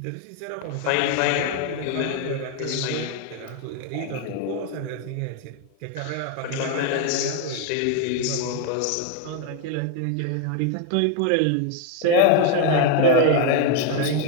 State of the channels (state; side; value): different; both; correlation 0.01